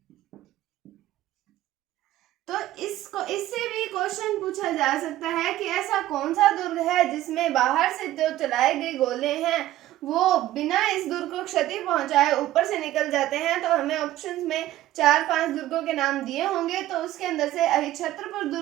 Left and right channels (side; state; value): left; quieter; 14.6 dB